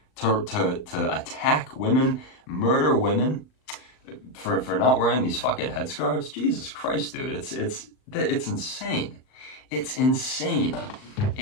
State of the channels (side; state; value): right; late; 39 ms